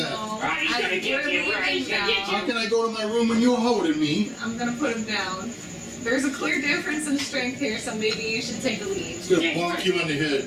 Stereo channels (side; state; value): both; identical; correlation 1.00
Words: Rotty's gonna get we're you. Rotty's leaving gonna get now. How can I go to my room when you're holding me?" I'm gonna put him down. There's a clear difference in strength here, so maybe you should take a lead. He's gonna bonk you on the